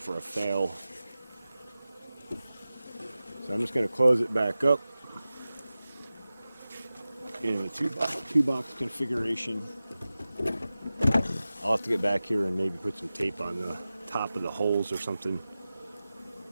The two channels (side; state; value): both; inverted; correlation -0.95